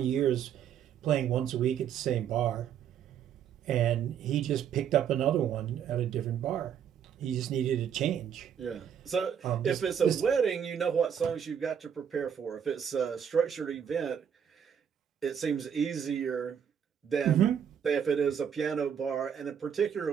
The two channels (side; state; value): left; quieter; 8.3 dB